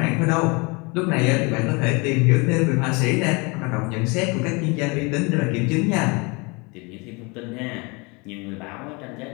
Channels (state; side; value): quieter; right; 28.7 dB